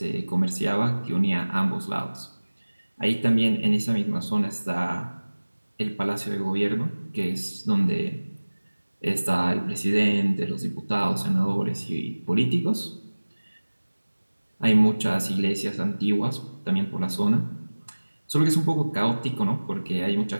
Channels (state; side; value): inverted; both; correlation -1.00